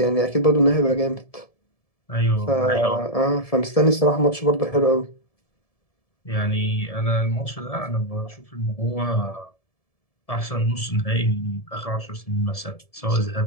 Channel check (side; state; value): right; late; 1.7 ms